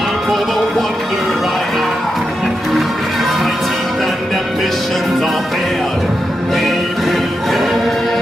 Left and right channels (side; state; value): both; normal; correlation 0.86